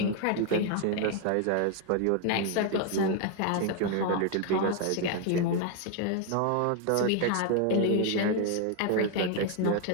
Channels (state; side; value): different; both; correlation 0.01